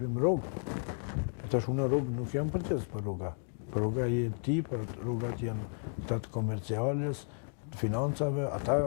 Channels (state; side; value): silent; right; digital silence